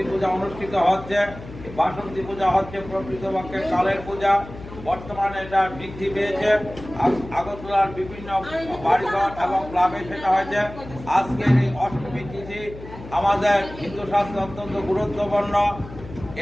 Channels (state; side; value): noise; left; hum, 14 dB below the sound